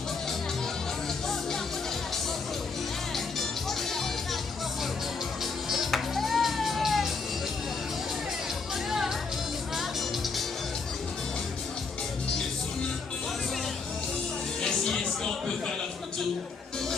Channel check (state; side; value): quieter; right; 4.7 dB